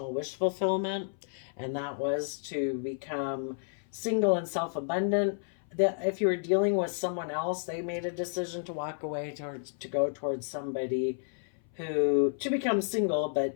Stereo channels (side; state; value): right; silent; 57 dB below the other